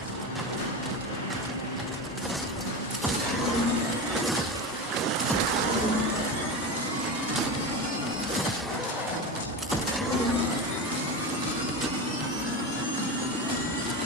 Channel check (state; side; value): normal; both; correlation 0.22